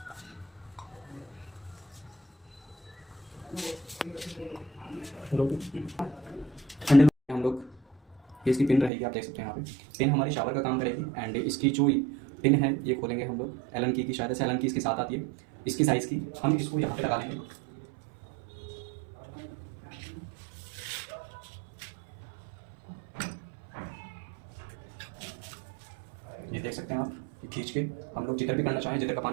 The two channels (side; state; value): left; drops out; at 8.9 s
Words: हैंडल हम लोग ये इसकी पिन रहेगी, आप देख सकते हैं यहाँ पे पिन हमारी शावर का काम करेगी एंड इसकी जो पिन है ये खोलेंगे हम लोग एलन की शायद से एलन की इसके साथ आती है इसकी साइज़ की। हम इसको यहाँ पे लगा लेंगे। ये देख सकते हैं आप, ये खींच के हम लोग जिधर भी करना चाहें, जिधर का